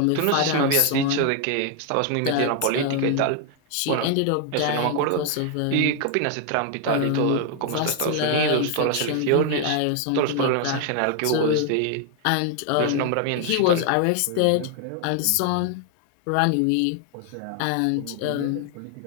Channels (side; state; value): both; different; correlation 0.00